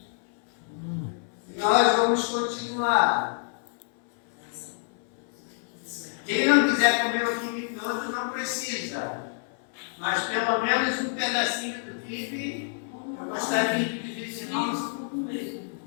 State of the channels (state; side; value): silent; right; 60 dB below the other